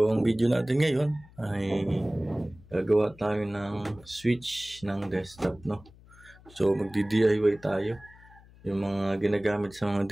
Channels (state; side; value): noise; left; hum, 24 dB below the sound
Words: ang video natin ngayon ay gagawa tayo ng switch ng desktop, no? So magdi-DIY tayo yung mga ginagamit sa mga